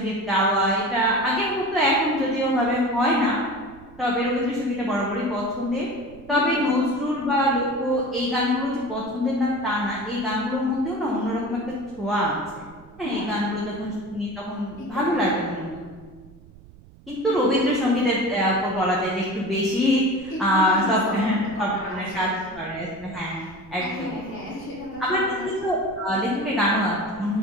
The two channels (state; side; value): noise; right; rumble, 22 dB below the sound